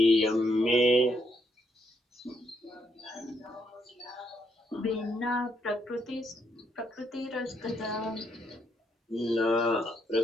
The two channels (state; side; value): normal; both; correlation 0.76